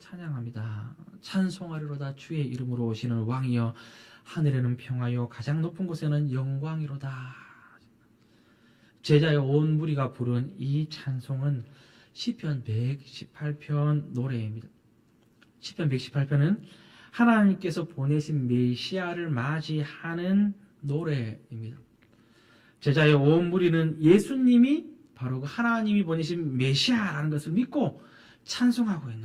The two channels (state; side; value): identical; both; correlation 1.00